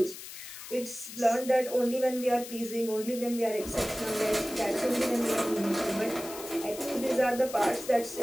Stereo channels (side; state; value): left; noise; hiss, 12 dB below the sound